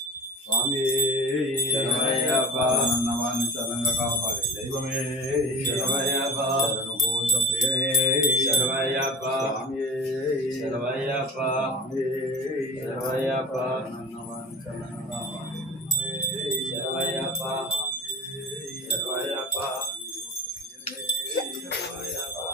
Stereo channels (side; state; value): both; normal; correlation 0.32